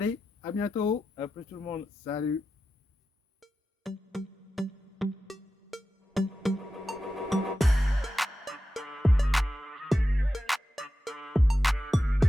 à bientôt. À plus tout le monde. Salut.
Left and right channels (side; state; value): both; normal; correlation 0.91